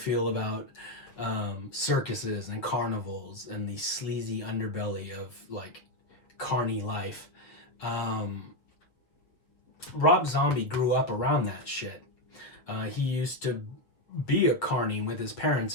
about circuses and carnivals and the sleazy underbelly of like carny life. Rob Zombie grew up around that shit. He used to be a carny with his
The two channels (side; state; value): right; late; 7.4 ms